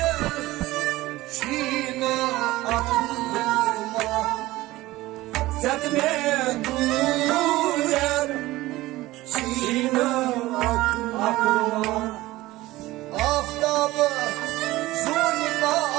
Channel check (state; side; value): quieter; left; 18.0 dB